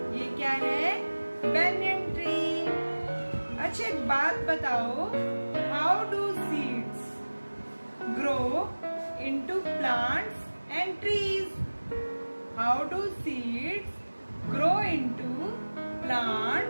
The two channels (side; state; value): both; inverted; correlation -1.00